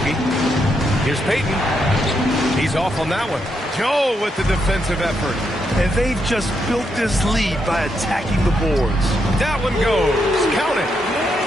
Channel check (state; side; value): normal; both; correlation 0.80